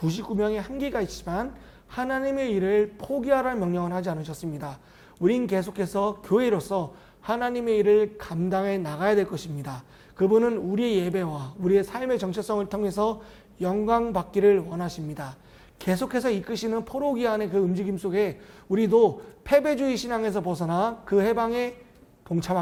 한계가 있지만 하나님의 일을 포기하라는 명령을 하지 않으셨습니다. 우린 계속해서 교회로서 하나님의 일을 감당해 나가야 될 것입니다. 그분은 우리의 예배와 우리의 삶의 정체성을 통해서 영광 받기를 원하십니다. 계속해서 이끄시는 포로기한의 그 움직임 속에 우리도 패배주의 신앙에서 벗어나 그 해방에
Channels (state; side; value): identical; both; correlation 1.00